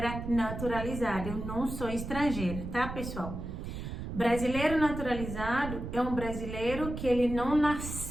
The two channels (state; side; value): noise; right; rumble, 7 dB below the sound